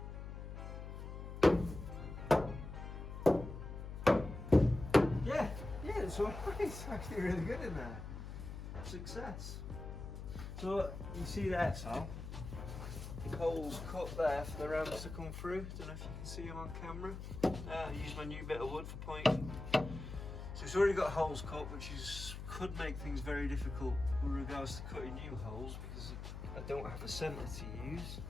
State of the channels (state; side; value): noise; left; hum, 8 dB below the sound